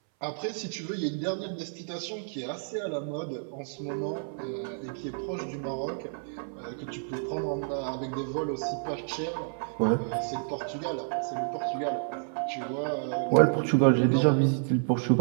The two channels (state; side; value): silent; left; 58 dB below the other